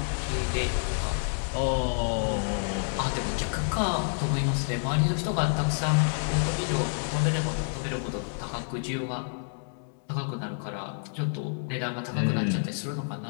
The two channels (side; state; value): right; silent; digital silence